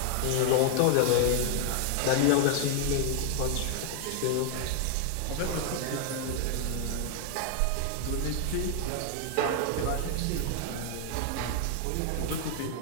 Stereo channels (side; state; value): both; different; correlation 0.00